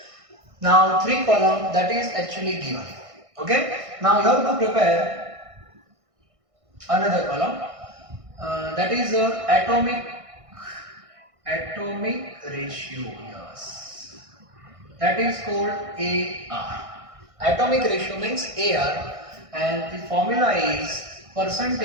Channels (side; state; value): left; late; 1.6 ms